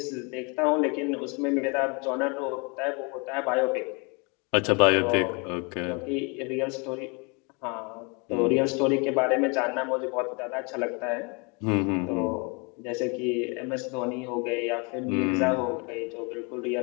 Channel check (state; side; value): quieter; right; 31.8 dB